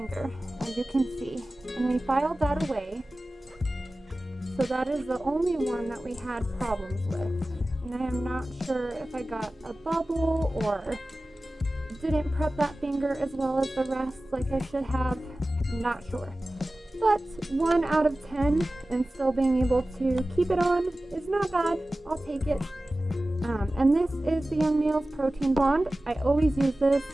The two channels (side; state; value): both; normal; correlation 0.96